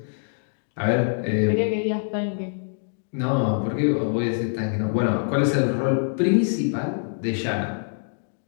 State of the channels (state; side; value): silent; right; digital silence